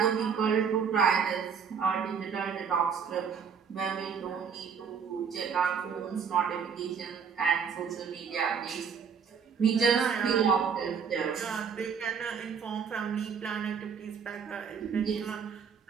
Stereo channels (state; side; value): quieter; left; 6.6 dB